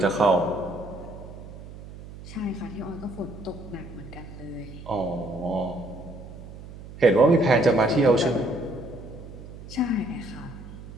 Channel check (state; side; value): noise; right; hum, 14 dB below the sound